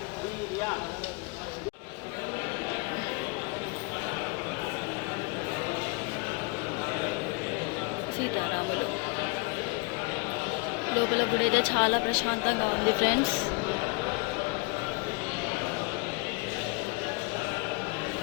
సీతారాములు లోపల గుడి అయితే చాలా ప్రశాంతంగా ఉంది ఫ్రెండ్స్.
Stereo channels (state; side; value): quieter; right; 30.0 dB